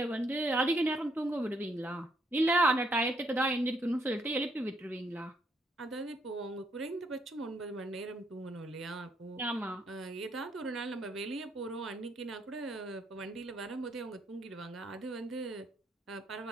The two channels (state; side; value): normal; both; correlation 0.73